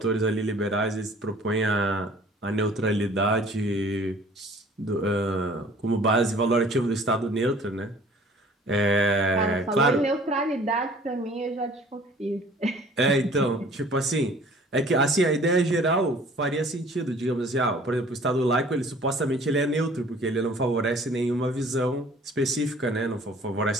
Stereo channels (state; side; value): normal; both; correlation 0.51